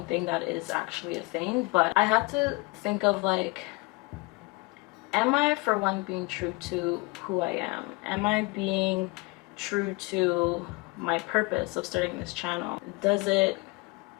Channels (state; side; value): quieter; right; 26.3 dB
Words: thing that is actually a thing, but I had to think of like, am I, for one, being true to who I am? Am I being true to my purpose of starting this channel? Does it